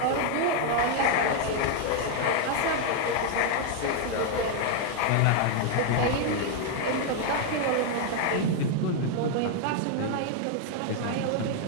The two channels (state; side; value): different; both; correlation 0.00